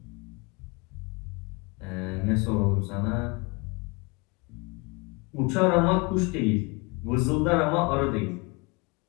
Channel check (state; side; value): quieter; right; 28.4 dB